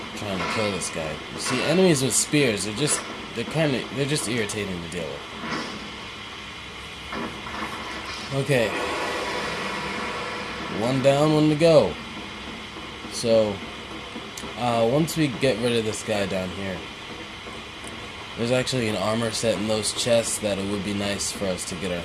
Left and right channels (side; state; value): both; identical; correlation 1.00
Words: trying to kill this guy. You see, enemies with spears, they're just irritating to deal with. Okay. One down, one to go. So, once we get rid of this guy down here, there's actually an armor set in those chests that it would be nice for us to get